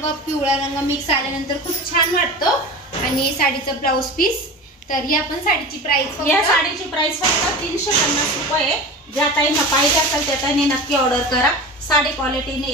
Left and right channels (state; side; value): normal; both; correlation 0.32